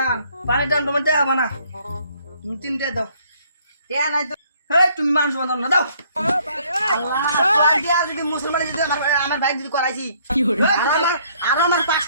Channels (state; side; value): inverted; both; correlation -0.63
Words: পানের দাম তোমার দেওয়া না, তুমি 3টে দাও। টিয়া নাই তো হেই তুমি মানুষ বাঁধাও না দাও। আল্লাহ টিয়া যদি মুসলমান যদি আমার ভাই যদি করাইছি আর আমার